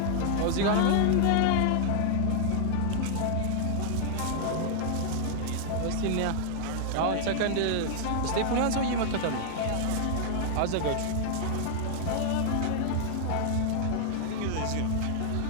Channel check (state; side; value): different; both; correlation 0.00